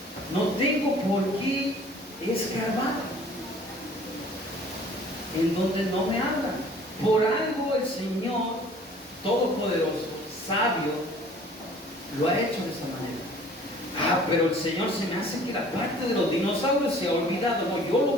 no tengo por qué escarbar en donde no me habla. Por algo el Señor Todopoderoso, sabio, lo ha hecho de esa manera. Pero el Señor se me hace que la parte de los dinosaurios se ha olvidado. No, yo lo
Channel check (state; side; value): normal; both; correlation 0.51